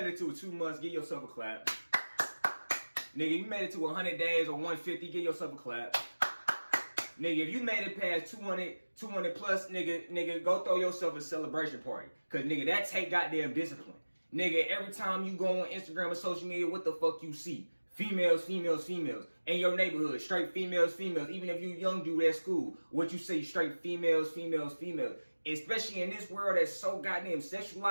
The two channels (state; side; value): inverted; both; correlation -1.00